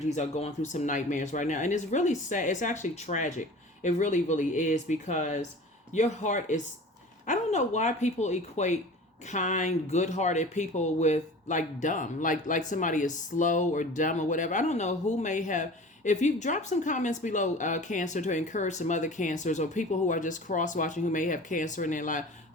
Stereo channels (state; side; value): normal; both; correlation 0.40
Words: are going through some nightmares right now, and it's really sad. It's actually tragic. It really, really is, because your heart is, I don't know why people equate kind, good-hearted people with like dumb, like somebody is slow or dumb or whatever. I don't know who may have. If you drop some comments below, Cancer, to encourage some other Cancers or people who are just cross-watching who may have Cancer in their life,